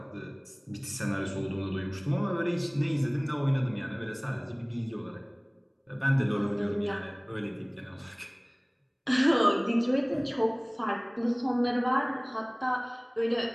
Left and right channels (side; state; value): both; identical; correlation 1.00